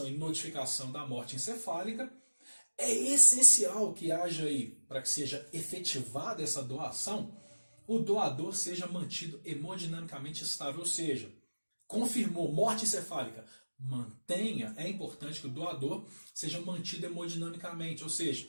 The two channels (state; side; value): inverted; both; correlation -1.00